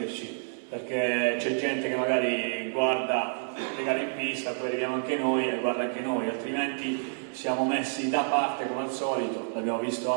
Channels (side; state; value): left; silent; 58 dB below the other